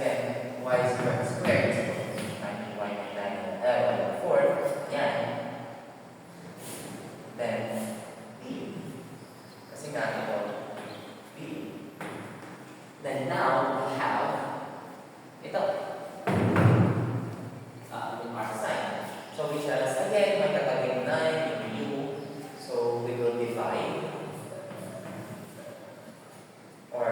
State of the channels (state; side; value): identical; both; correlation 1.00